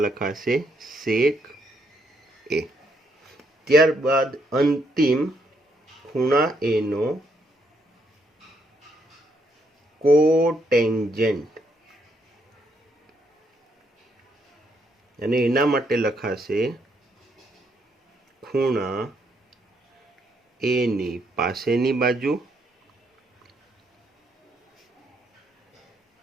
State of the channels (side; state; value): both; normal; correlation 0.74